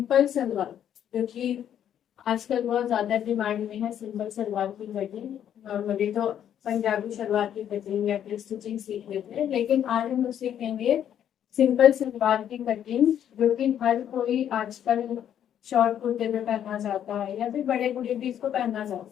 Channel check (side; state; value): right; quieter; 9.9 dB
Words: सलवार, जो कि आजकल बहुत ज़्यादा डिमांड में है। सिंपल सलवार की कटिंग नॉर्मली तो पंजाबी सलवार की कटिंग या फिर स्टिचिंग सीख लेते हैं, लेकिन आज हम लोग सीखेंगे सिंपल सलवार की कटिंग, जो कि हर कोई आजकल शॉर्ट कुर्ते में पहनना चाहता है या फिर बड़े बूढ़े भी इसको पहनना चाहते